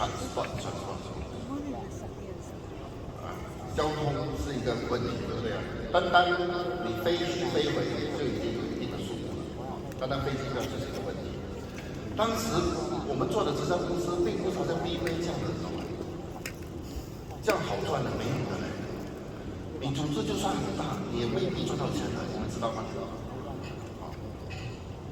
交通是一个问题，对不对啊？单你飞去飞回就已经有一定的数目了，单飞机票就是一个问题。当时我们做的直销公司并不是好像 BV 这样的，这样好赚的没有的嘞。你组织就算很大，你也未必赚到钱的，你们知道吗？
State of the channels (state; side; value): identical; both; correlation 1.00